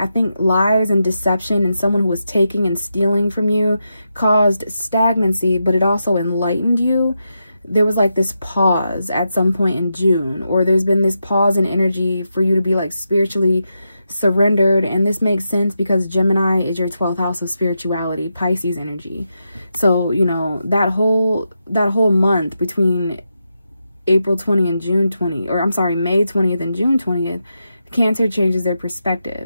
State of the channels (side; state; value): both; inverted; correlation -0.85